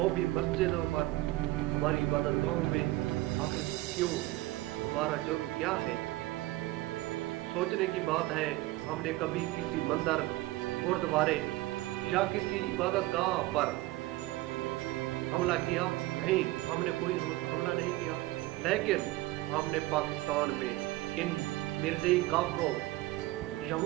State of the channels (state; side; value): quieter; left; 18.5 dB